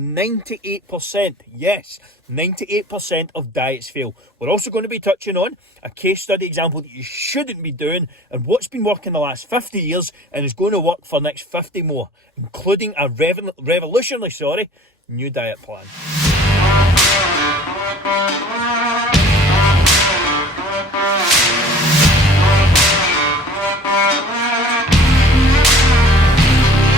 yes, 98% of diets fail. We're also going to be touching on a case study example that you shouldn't be doing and what's been working the last 50 years and is going to work for the next 50 more, including a revolutionary, new diet plan.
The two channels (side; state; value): both; normal; correlation 0.48